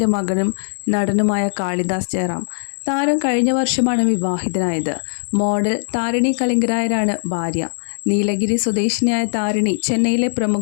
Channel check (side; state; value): right; silent; digital silence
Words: മകനും നടനുമായ കാളിദാസ് ജയറാം. താരം കഴിഞ്ഞ വർഷമാണ് വിവാഹിതനായത്. മോഡൽ താരിണി കലിംഗരായരാണ് ഭാര്യ. നീലഗിരി സ്വദേശിനിയായ താരിണി ചെന്നൈയിലെ